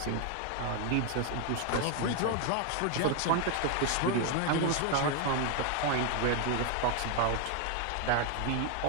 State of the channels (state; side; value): different; both; correlation 0.01